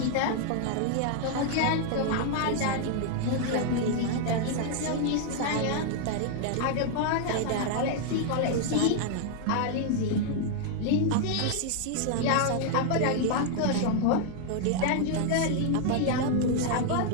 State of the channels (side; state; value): both; different; correlation 0.00